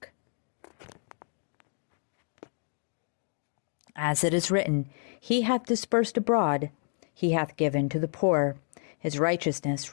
As it is written, He hath dispersed abroad, He hath given to the poor, His righteousness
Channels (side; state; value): right; silent; 58 dB below the other